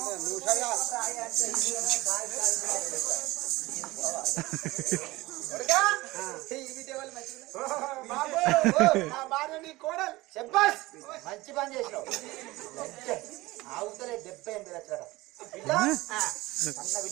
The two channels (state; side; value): quieter; left; 19.8 dB